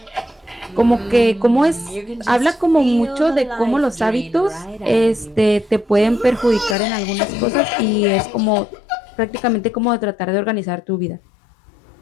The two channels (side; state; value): right; drops out; at 6.8 s